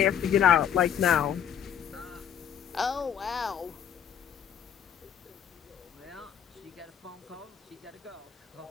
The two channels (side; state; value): right; quieter; 8.9 dB